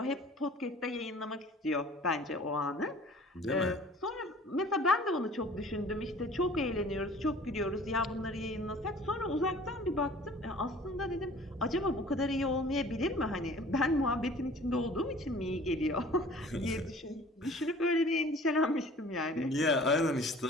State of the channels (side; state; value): both; normal; correlation 0.48